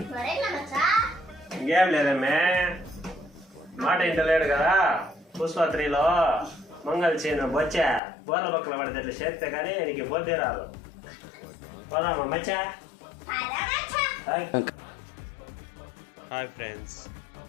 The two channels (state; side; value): drops out; right; at 8.0 s